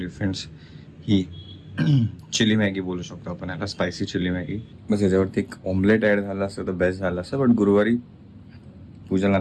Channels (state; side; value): identical; both; correlation 1.00